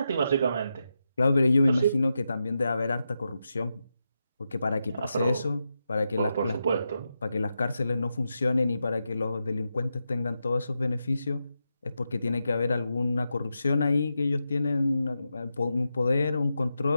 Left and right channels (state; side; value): inverted; both; correlation -0.87